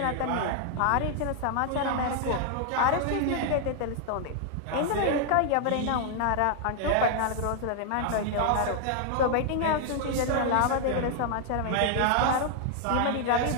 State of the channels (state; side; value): different; both; correlation 0.00